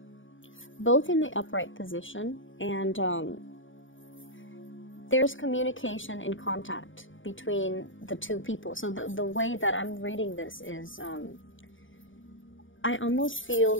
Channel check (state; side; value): late; right; 0.57 ms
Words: both in the upright position. And there's communication and contact between the two people. So the way that I'm reading this is, I almost feel